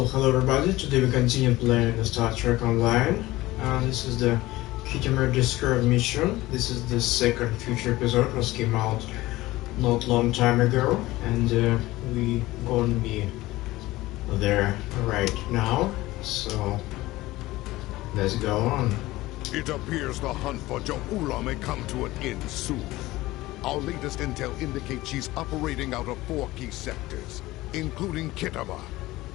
hello everybody, today we continue playing the Star Trek Online. This is the Khitomer Discovered mission. This is the second future episode, was came out not long time ago, and we gonna be there right now. So let's go on. It appears the hunt for Jo'ula may come to an end soon. Our latest intel indicates she's operating out of 4 key sectors, including Khitomer.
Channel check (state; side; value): quieter; right; 18.2 dB